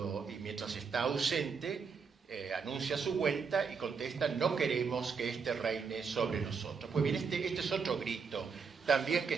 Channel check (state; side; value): quieter; left; 5.6 dB